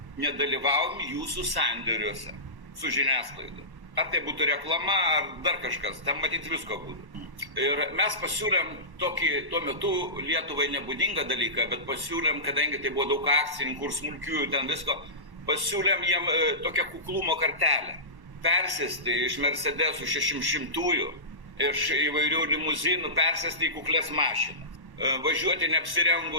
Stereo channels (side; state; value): left; late; 1.1 ms